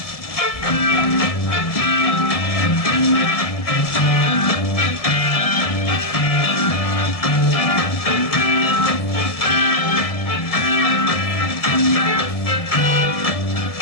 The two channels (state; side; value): late; right; 1.7 ms